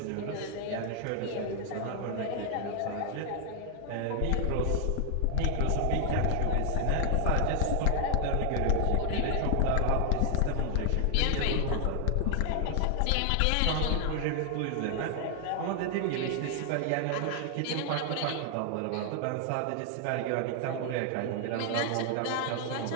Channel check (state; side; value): different; both; correlation 0.00